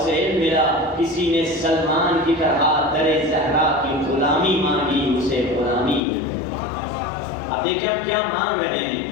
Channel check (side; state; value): right; drops out; at 6.0 s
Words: علم ملا, کسی نے سلمان کی طرح در زہرا کی غلامی مانگی اسے غلامی ملی. اب دیکھیں ہم کیا مانگ رہے